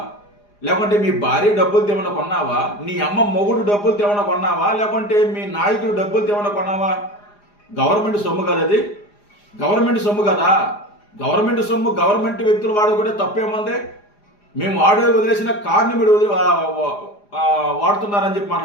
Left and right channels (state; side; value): late; right; 4.9 ms